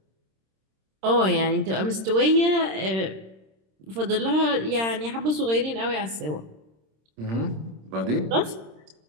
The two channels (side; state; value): left; late; 26 ms